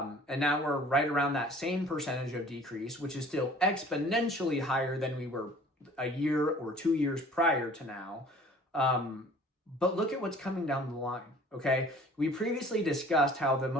now we're right around that same percentage of decrease, which is still exponentially higher than we were a year or 2 years prior to now. But look at what's coming down the line, okay? We previously discussed how the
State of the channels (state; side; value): normal; both; correlation 0.50